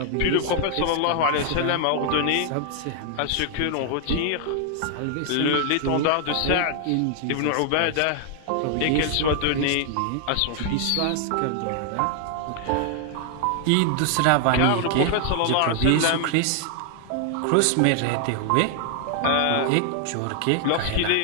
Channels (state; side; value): different; both; correlation 0.00